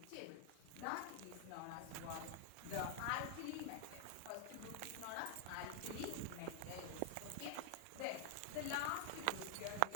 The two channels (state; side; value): different; both; correlation 0.00